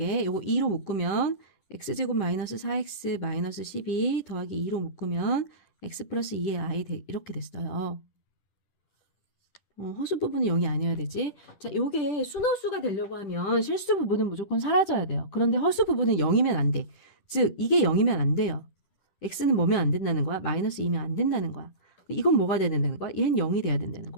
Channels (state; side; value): late; right; 10 ms